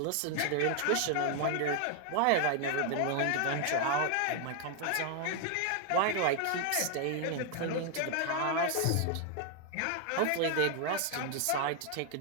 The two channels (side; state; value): both; different; correlation 0.00